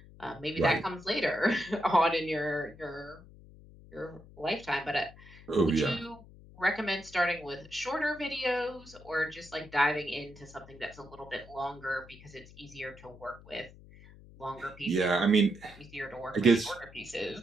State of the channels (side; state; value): left; noise; hum, 20 dB below the sound